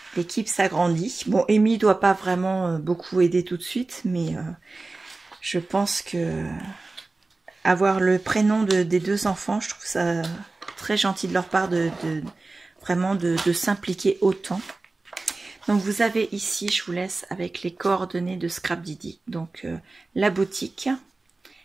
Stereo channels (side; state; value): left; quieter; 3.4 dB